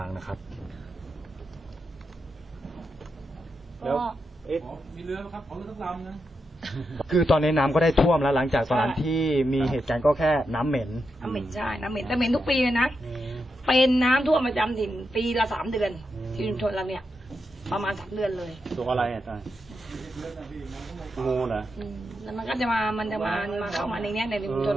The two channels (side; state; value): both; normal; correlation 0.86